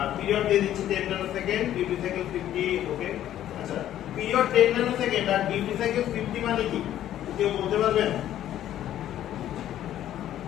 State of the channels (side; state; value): right; quieter; 12.0 dB